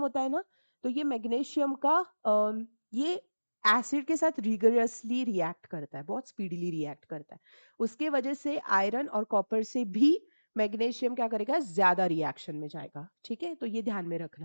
होता है ना, तो ये मैग्नीशियम का ये एसिड के साथ रिगरसली रिएक्ट करता है, बहुत स्पीडीली रिएक्ट करता है। उसके वजह से आयरन और कॉपर से भी मैग्नीशियम क्या करेगा? ज्यादा रिएक्शन में जाएगा, ठीक है। तो ये ध्यान में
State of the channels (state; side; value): inverted; both; correlation -1.00